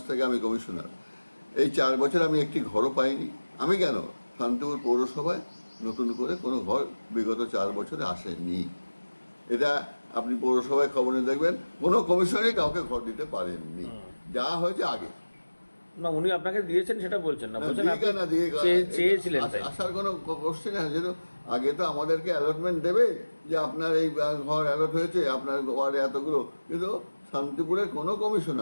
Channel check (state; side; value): inverted; both; correlation -1.00